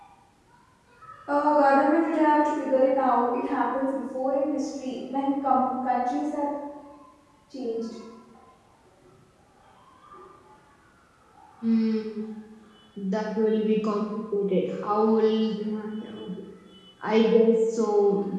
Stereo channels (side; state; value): both; identical; correlation 1.00